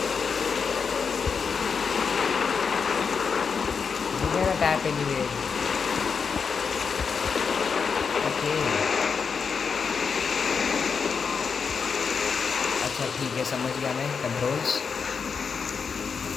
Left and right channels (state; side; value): quieter; right; 5.8 dB